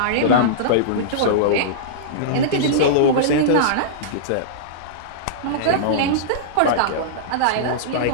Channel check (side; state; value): both; different; correlation -0.03